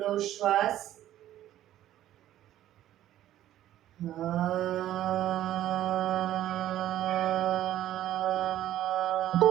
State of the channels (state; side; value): quieter; left; 12.8 dB